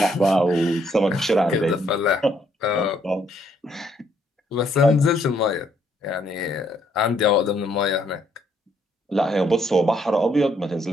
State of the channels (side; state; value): both; normal; correlation 0.70